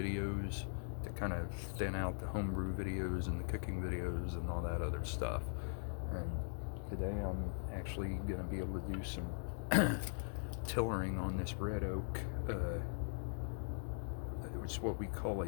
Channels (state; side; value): silent; right; digital silence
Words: to kind of thin out the homebrew videos and the cooking videos and all that other stuff. And today I'm actually going to be able to do some tillering on this red oak. It's what we call a